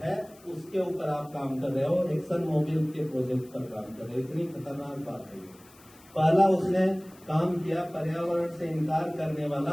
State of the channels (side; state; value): left; noise; hiss, 25 dB below the sound